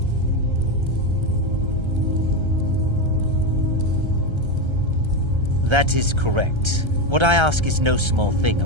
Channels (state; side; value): late; left; 1.3 ms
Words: That is correct. What I ask is no small thing,